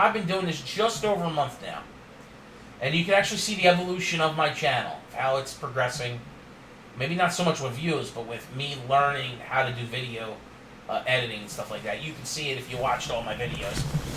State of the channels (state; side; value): identical; both; correlation 1.00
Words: been doing this just over a month now. And you can actually see the evolution of my channel, how it's progressing. Maybe not so much with views, but with me learning how to do video editing and stuff like that. You can see it if you watched all my videos.